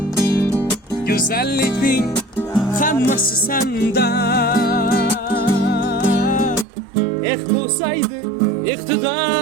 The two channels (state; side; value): drops out; left; at 6.7 s